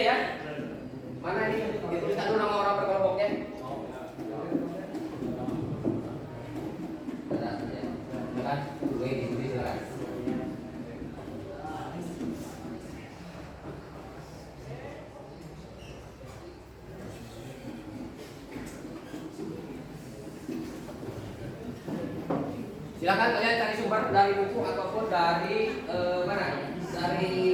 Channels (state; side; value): identical; both; correlation 1.00